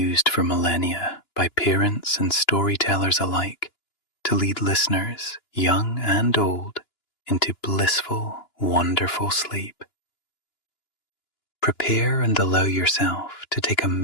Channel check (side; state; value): right; late; 2.9 ms